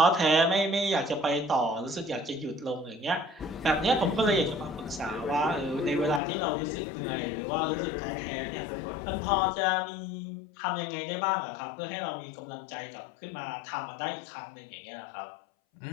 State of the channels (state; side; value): drops out; right; at 6.2 s